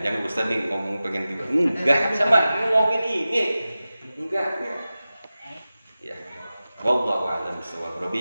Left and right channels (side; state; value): both; inverted; correlation -0.95